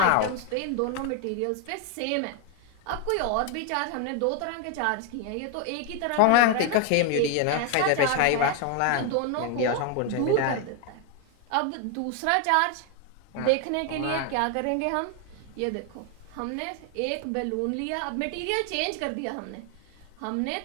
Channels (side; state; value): both; different; correlation 0.01